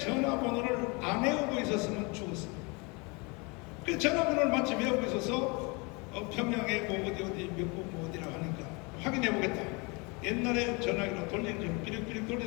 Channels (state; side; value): quieter; right; 29.3 dB